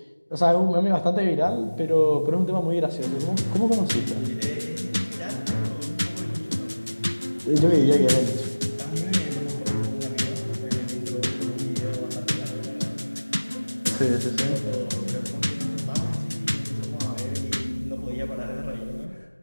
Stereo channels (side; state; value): both; inverted; correlation -1.00